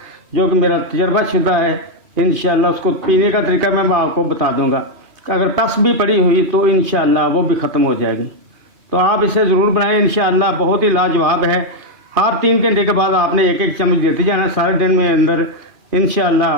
जो कि मेरा तजर्बाशुदा है। इंशाल्लाह उसको पीने का तरीका मैं आपको बता दूँगा। अगर टस भी पड़ी हुई तो इंशाअल्लाह वो भी ख़त्म हो जाएगी। तो आप इसे ज़रूर बनाएं, इंशाअल्लाह बहुत ही लाजवाब है। हर 3 घंटे के बाद आपने 1 चम्मच देते जाना सारे दिन में अंदर। इंशाअल्लाह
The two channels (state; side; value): late; left; 2.4 ms